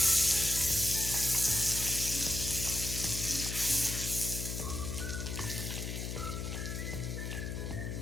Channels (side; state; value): left; noise; hum, 4 dB below the sound